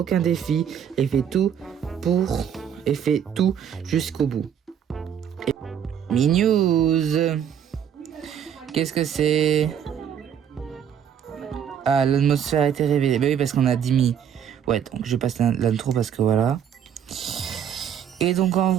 défi et fait tout jusqu'au bout. Mi-news. Qu'est-ce que c'est? Ah, l'atmosphère a été révélée. Bah oui, parce qu'on a 10 mi. Ouais, donc je passe l'intro parce que voilà. Et donc en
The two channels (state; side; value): quieter; left; 8.7 dB